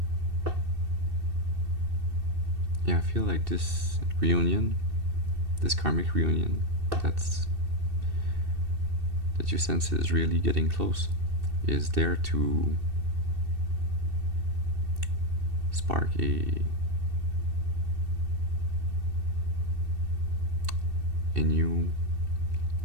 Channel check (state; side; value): late; left; 2.7 ms